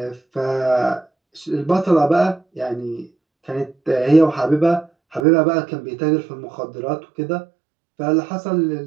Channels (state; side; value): drops out; left; at 5.2 s